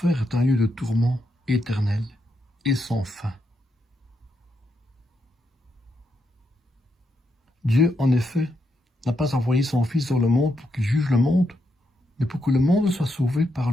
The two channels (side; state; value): both; normal; correlation 0.81